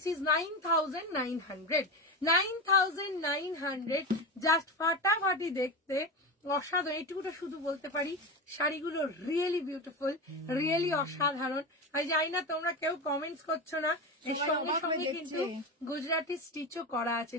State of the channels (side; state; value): both; normal; correlation 0.21